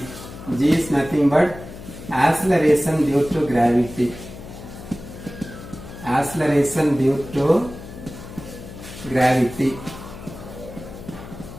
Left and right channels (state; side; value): noise; left; hum, 14 dB below the sound